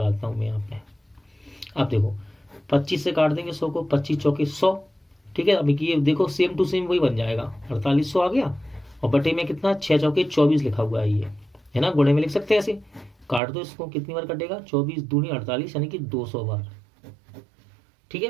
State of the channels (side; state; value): left; drops out; at 13.4 s